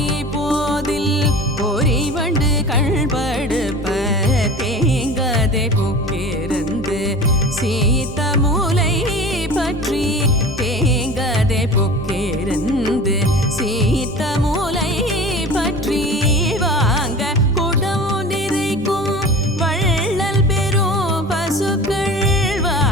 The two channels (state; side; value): normal; both; correlation 0.37